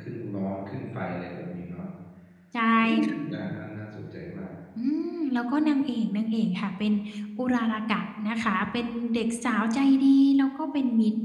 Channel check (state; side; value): identical; both; correlation 1.00